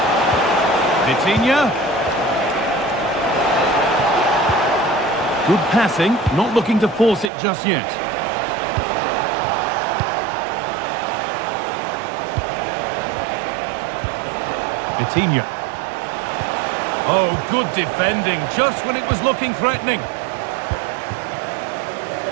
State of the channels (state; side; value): drops out; left; at 7.3 s